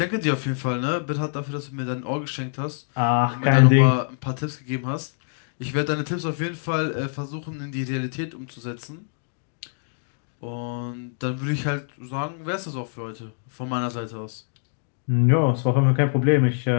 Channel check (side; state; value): right; silent; digital silence